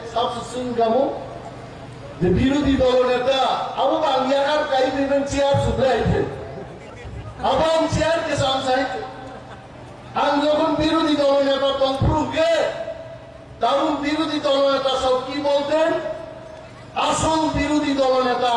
sab susun kamu. Di biru di dalam neta, aku bangyakar kai dengan ciar sudah itu. Abang ciar kesan saya. Anggapan biru di dalam neta tongprung ke. Tahun biru di dalam neta sauki bolten. Asal biru di dalam neta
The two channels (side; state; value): both; identical; correlation 1.00